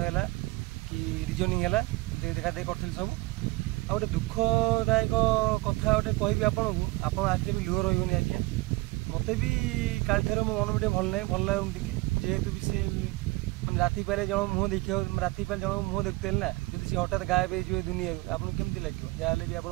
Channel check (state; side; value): quieter; left; 22.9 dB